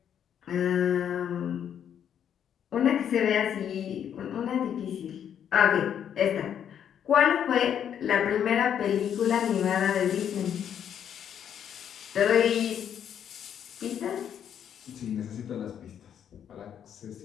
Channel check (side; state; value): right; quieter; 9.0 dB